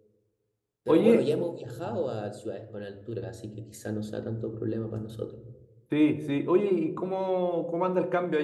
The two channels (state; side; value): identical; both; correlation 1.00